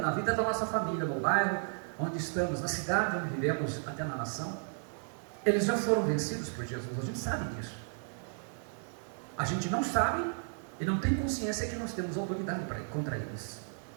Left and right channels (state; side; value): silent; left; 55 dB below the other